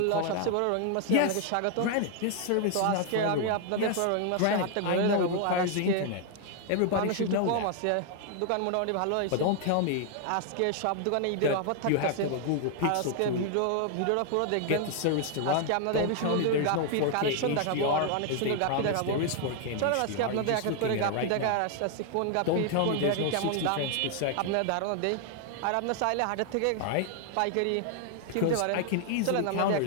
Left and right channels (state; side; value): different; both; correlation 0.00